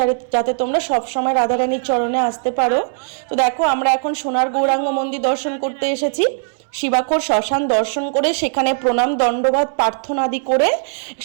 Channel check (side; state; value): left; silent; 67 dB below the other